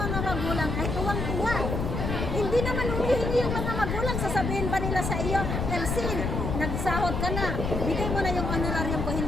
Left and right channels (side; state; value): left; noise; rumble, 2 dB below the sound